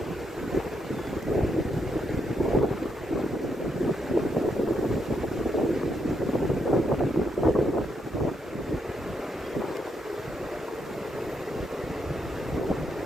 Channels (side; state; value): both; normal; correlation 0.78